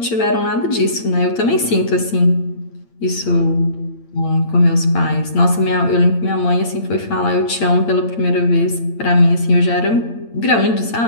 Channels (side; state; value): right; late; 8.8 ms